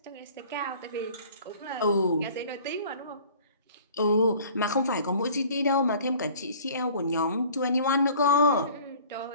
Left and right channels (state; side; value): inverted; both; correlation -0.48